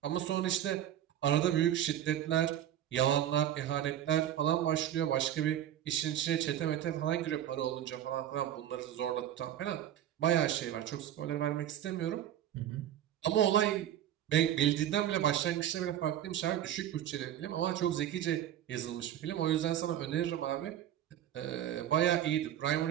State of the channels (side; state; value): left; quieter; 11.3 dB